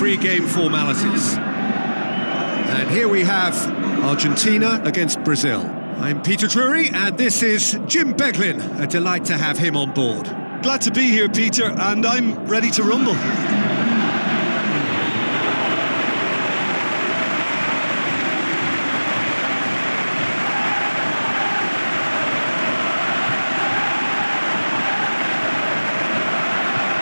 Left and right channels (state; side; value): inverted; both; correlation -1.00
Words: formalities. And here we have Argentina against Brazil. I'm Peter Drury, and this is Jim Beglin. A delight to have him on board. Glad to be here, Peter, and I'm ready to rumble.